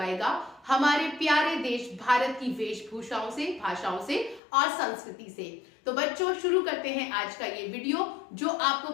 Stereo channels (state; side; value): drops out; right; at 4.4 s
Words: हमारे प्यारे देश भारत की वेशभूषाओं से, भाषाओं से और संस्कृति से। तो बच्चों, शुरू करते हैं आज का ये वीडियो जो आपको